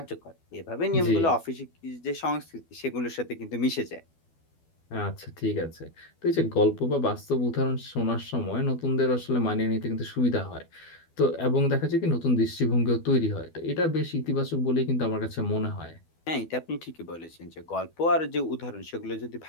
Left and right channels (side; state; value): right; late; 12 ms